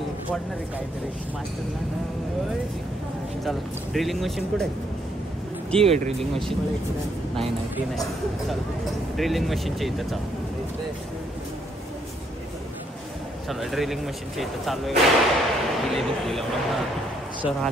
पडणार आहे काहीतरी मास्टर. चला, ड्रिलिंग मशीन कुठे आहे? ती आहे ड्रिलिंग मशीन. नाही ती नाही. चला ड्रिलिंग मशीनच्या इथं चला ड्रिलिंग मशीनच्या इथं चालू आहे. सर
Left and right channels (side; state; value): both; normal; correlation 0.72